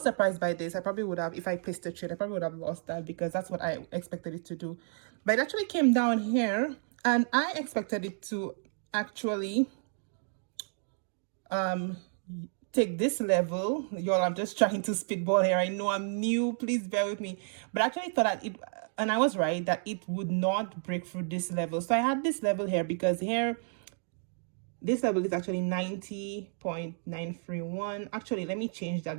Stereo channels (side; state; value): left; silent; 57 dB below the other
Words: surprised by this. I probably would have, if I placed a trade, I probably would have lost that because that's what I expected it to do. But it actually came down here and I expected it to actually take this level. Y'all, I'm just trying to spitball here. I know I'm new, please bear with me, but I actually thought that and I was right, that it would not break through this level. So I had this level here because here this level is actually 90.931. Actually, let me change that